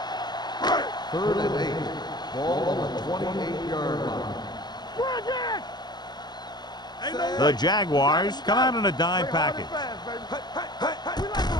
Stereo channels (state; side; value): late; right; 0.20 ms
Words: Third and 8. Ball on the 28-yard line. Bring it. The Jaguars come out in a dime package.